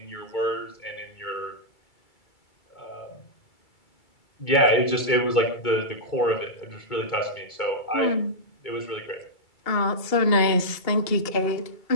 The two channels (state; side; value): late; right; 2.3 ms